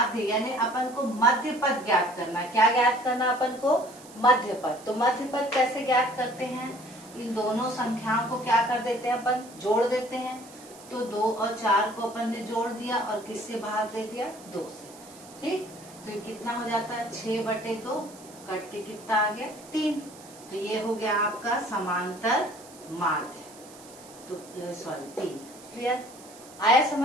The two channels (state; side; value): noise; right; hiss, 20 dB below the sound